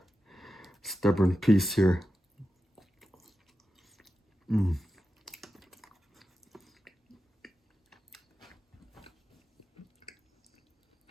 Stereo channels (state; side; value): normal; both; correlation 0.91